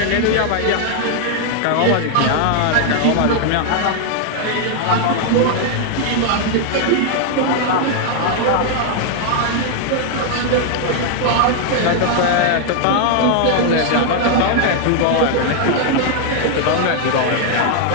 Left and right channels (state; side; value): different; both; correlation 0.00